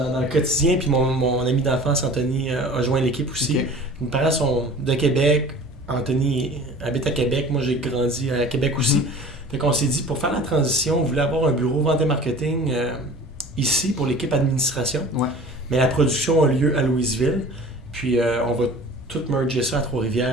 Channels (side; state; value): both; normal; correlation 0.43